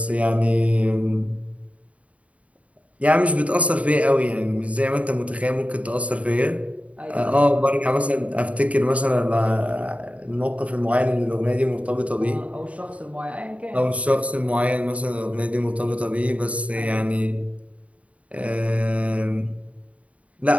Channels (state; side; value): late; left; 0.066 ms